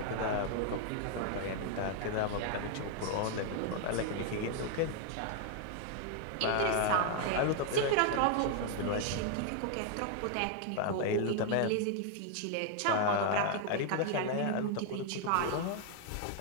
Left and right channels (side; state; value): both; different; correlation 0.00